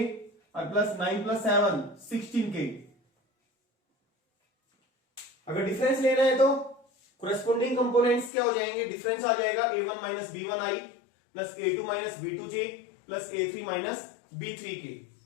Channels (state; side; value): drops out; right; at 8.3 s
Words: और प्लस 9 प्लस 7 16k। अगर डिफरेंस लेना है तो कोरेस्पोंडिंग कंपोनेंट्स क्या हो जाएंगे, डिफरेंस आ जाएगा a1 minus b1i plus a2 minus b2j plus a3 minus b3k।